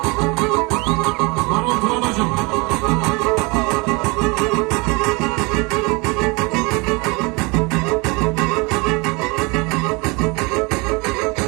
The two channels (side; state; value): left; quieter; 27.5 dB